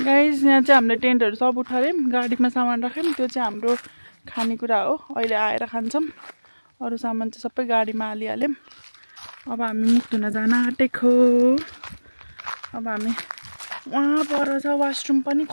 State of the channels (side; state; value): both; inverted; correlation -1.00